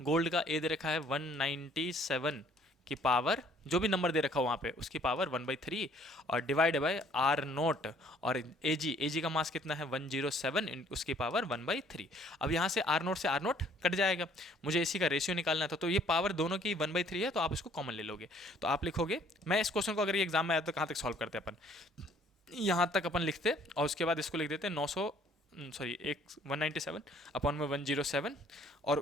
गोल्ड का, ए दे रखा है 197 की पावर, जो भी नंबर दे रखा हो वहाँ पे उसकी पावर 1/3, और डिवाइड बाय आर नोट, और ए जी का मास कितना है 107, उसकी पावर 1/3। अब यहाँ से आर नोट कट जाएगा, मुझे इसी का रेशियो निकालना था, तो ये पावर दोनों की 1/3 है, तो आप इसको कॉमन ले लोगे। तो आप लिखोगे, मैं इस क्वेश्चन को अगर ये एग्जाम में आया तो कहाँ तक सॉल्व करते अपन, यहाँ तक अपन लिखते, और उसके बाद इसको लिख देते 197 अपॉन में 107,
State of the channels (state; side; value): normal; both; correlation 0.60